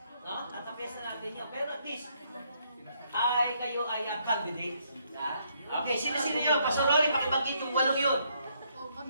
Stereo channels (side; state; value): both; inverted; correlation -0.72